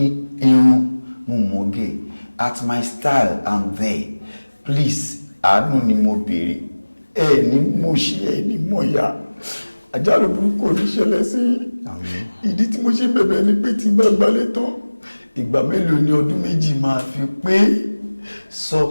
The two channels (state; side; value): inverted; both; correlation -1.00